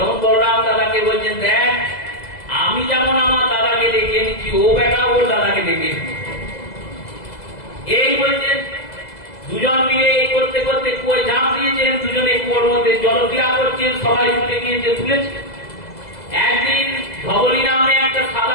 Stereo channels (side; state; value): right; late; 2.0 ms